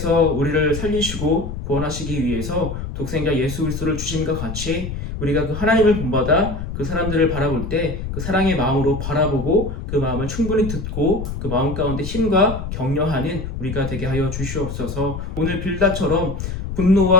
우리를 살리시고 구원하시기 위해서 독생자 예수 그리스도를 주심과 같이 우리가 그 하나님을 본받아 그 사람들을 바라볼 때 그 사랑의 마음으로 바라보고 그 마음을 충분히 듣고 그 마음 가운데 힘과 격려하는 우리가 되게 하여 주시옵소서. 오늘 빌닷처럼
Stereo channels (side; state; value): left; noise; rumble, 6 dB below the sound